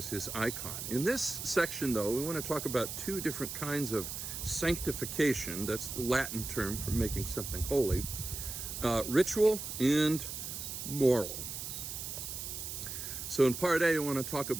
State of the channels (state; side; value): noise; right; hiss, 6 dB below the sound